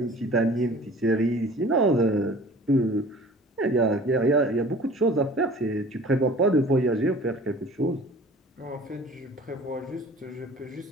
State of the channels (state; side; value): normal; both; correlation 0.46